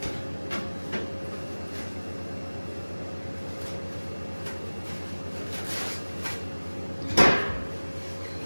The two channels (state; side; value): inverted; both; correlation -1.00